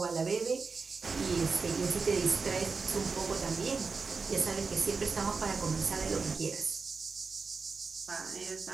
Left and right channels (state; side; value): quieter; left; 4.7 dB